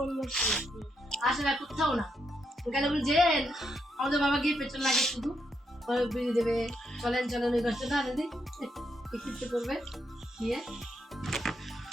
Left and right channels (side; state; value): both; normal; correlation 0.79